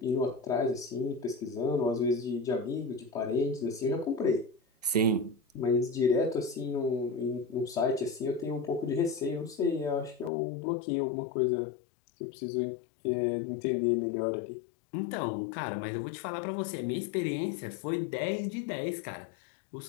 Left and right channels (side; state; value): right; drops out; at 10.3 s